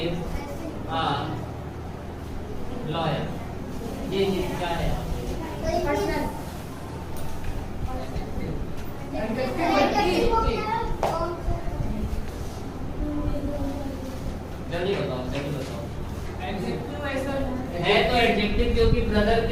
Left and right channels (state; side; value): identical; both; correlation 1.00